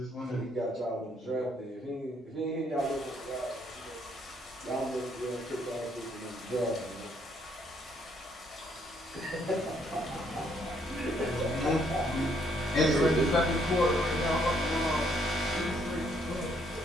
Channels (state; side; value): normal; both; correlation 0.69